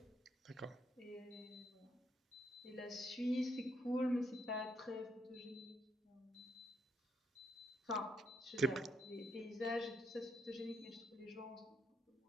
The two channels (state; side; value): normal; both; correlation 0.76